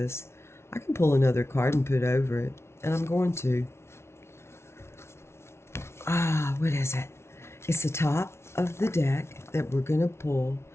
I can pull another card and put over it, and I'm going to. What is it? It's the top of the deck that we're going to pull,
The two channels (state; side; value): late; right; 0.13 ms